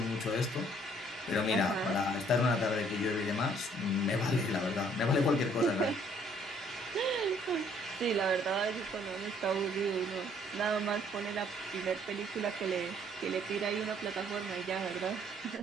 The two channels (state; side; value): normal; both; correlation 0.62